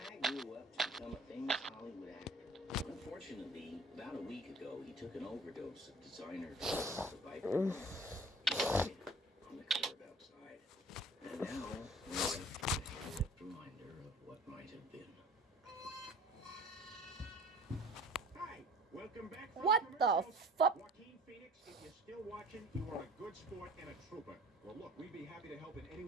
grew up to become a famous Hollywood actor. Unfortunately, about a week ago, he took an overdose of designer drugs, the Viper. On the curb outside. And now, we're left with a headlit reminder of what might have been. Hi, welcome back. from What the commercials. fuck? Joaquin Phoenix, if you're still watching, you are a good sport and a trooper. Well, look, we'd be happy to help in any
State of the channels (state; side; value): normal; both; correlation 0.47